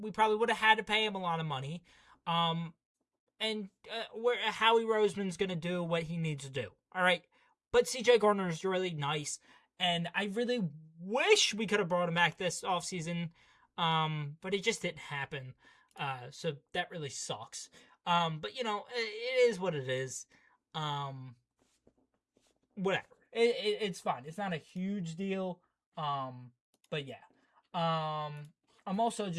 probably would have had to pay him a lot of money. And Howie Roseman's going to do what he needs to do. All right. But CJ Gardner is really nice, and I really wish we could have brought him back this offseason, but it just didn't happen. So that really sucks. But, it is what it is. Whatever. It's fine. It's not a huge deal. But yeah. I'm also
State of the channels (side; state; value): both; identical; correlation 1.00